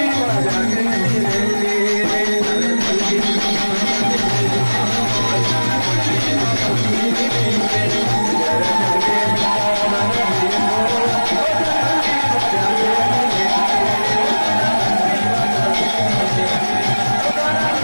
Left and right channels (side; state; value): both; inverted; correlation -1.00